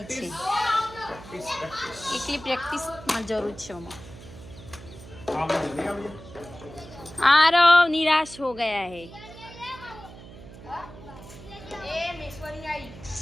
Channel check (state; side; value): noise; right; hum, 16 dB below the sound